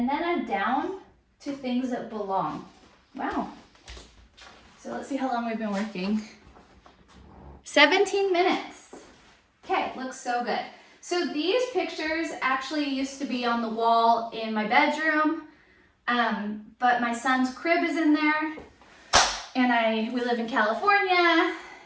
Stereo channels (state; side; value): identical; both; correlation 1.00